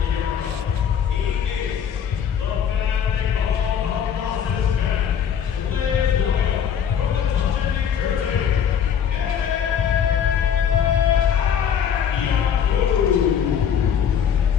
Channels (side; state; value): right; quieter; 8.1 dB